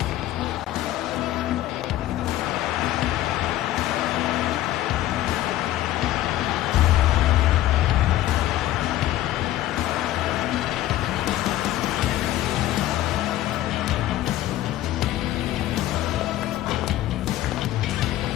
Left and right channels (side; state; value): right; quieter; 14.3 dB